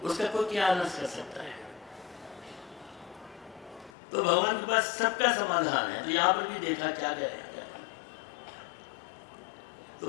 उसका कोई क्या नष्ट कर सकता है। तो भगवान के पास सबका समाधान है। तो यहाँ पर भी देखा क्या करेगा,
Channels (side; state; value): right; drops out; at 3.9 s